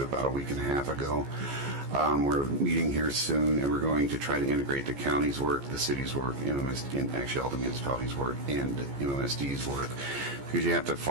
about a week and a half ago. We're meeting here soon, and we're going to try to integrate the county's work, the city's work, and actually all the municipalities' work, and MMSD's work, because you have to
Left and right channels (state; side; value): late; left; 14 ms